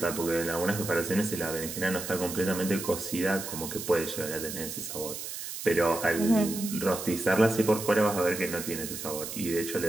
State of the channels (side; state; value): right; noise; hiss, 7 dB below the sound